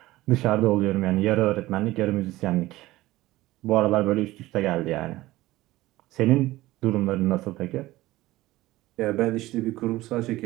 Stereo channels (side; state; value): left; quieter; 17.6 dB